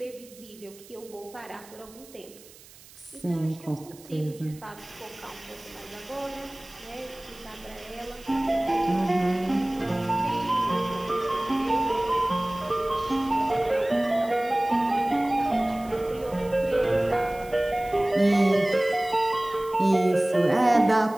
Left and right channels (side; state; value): right; noise; hiss, 22 dB below the sound